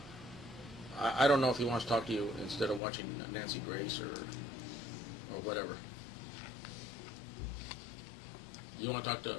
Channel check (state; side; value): drops out; right; at 2.8 s